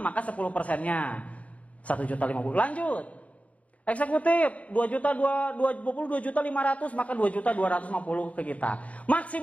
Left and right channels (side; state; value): right; late; 0.066 ms